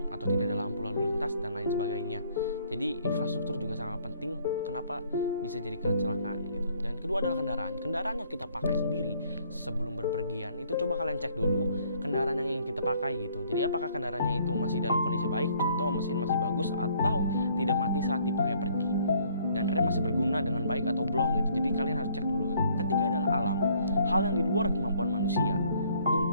atau tidak ada lampu lalu lintas dan lain sebagainya. Jadi infrastruktur juga sangat penting kenapa bisa jadi kecelakaan gitu. Dan kedua adalah kendaraan yang kita pakai sendiri sebelum berpergian. Itu coba kalian cek dulu kendaraan yang ingin kita pakai gitu. Jadi apakah kendaraannya itu masih dalam kondisi baik, contoh mesin masih bagus atau tidak mati saat dipakai pergi, dan rem masih berguna dengan baik atau belum gitu. Jadi kalian harus cek dulu. Ketiga adalah alam, hal yang di luar kemampuan manusia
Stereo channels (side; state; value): both; inverted; correlation -0.63